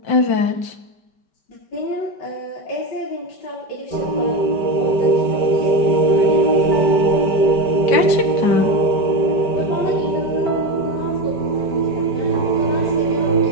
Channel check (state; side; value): late; right; 5.2 ms